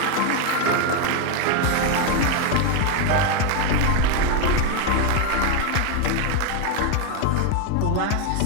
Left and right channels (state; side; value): different; both; correlation 0.01